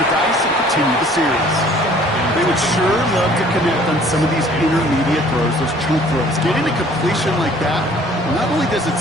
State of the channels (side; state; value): both; normal; correlation 0.55